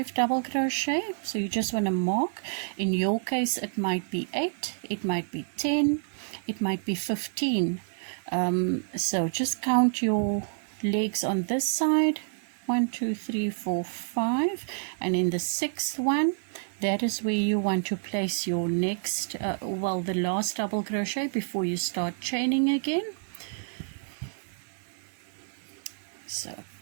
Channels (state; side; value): silent; left; digital silence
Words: double crochet, so you just want to mark. In your case it might be 8, it might be 10, it might be 15. So just count your legs on this side, 1 2 3 4 5, and in the 6th one, that is where you want to place your next the last double crochet before you start chaining again. So